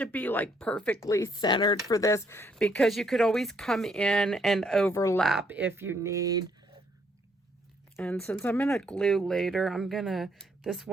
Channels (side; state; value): both; normal; correlation 0.70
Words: be like perfectly centered for this, because you could always come in and overlap if you need. And since I'm going to glue later, this